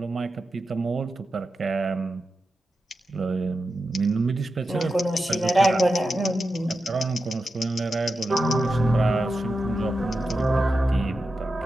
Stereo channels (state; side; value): normal; both; correlation 0.90